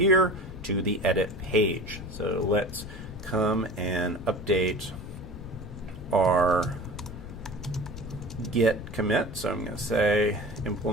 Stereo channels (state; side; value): noise; left; rumble, 12 dB below the sound